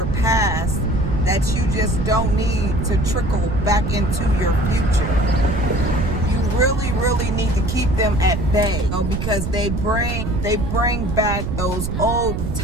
past that you just don't need to trickle back into your future. You really, really need to keep them at bay, because they bring back those old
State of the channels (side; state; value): right; noise; rumble, 3 dB below the sound